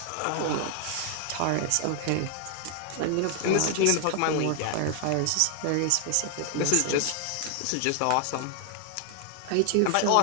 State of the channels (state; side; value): different; both; correlation 0.00